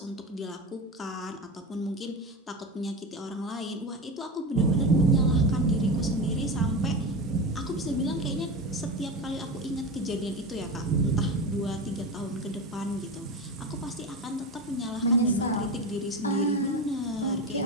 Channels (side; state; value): both; normal; correlation 0.22